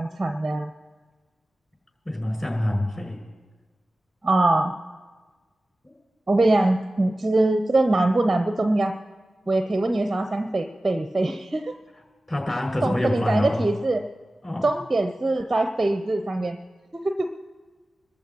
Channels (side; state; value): both; normal; correlation 0.96